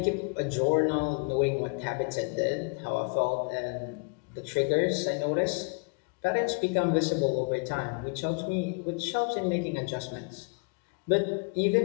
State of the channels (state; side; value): quieter; right; 34.8 dB